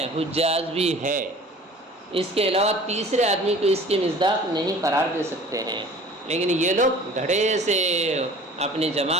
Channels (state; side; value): normal; both; correlation 0.46